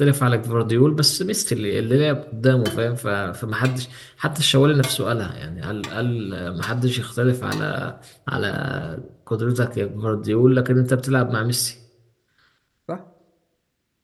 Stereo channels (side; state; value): both; identical; correlation 1.00